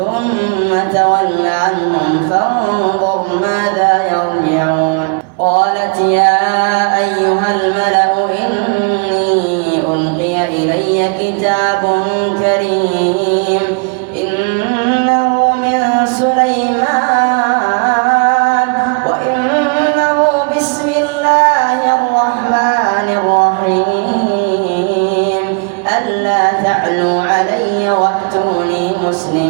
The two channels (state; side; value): quieter; left; 34.4 dB